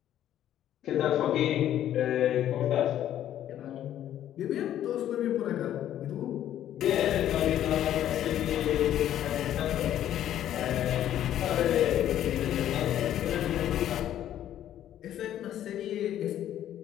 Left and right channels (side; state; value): right; quieter; 11.5 dB